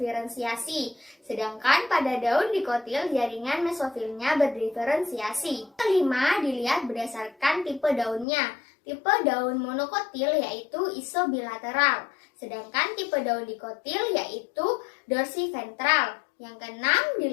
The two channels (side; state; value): right; drops out; at 8.2 s